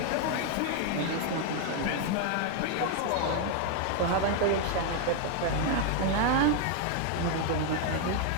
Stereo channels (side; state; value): both; different; correlation 0.00